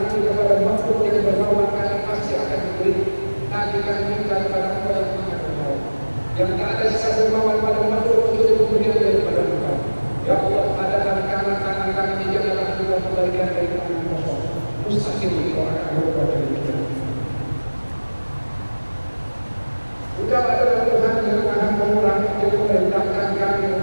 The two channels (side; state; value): both; inverted; correlation -1.00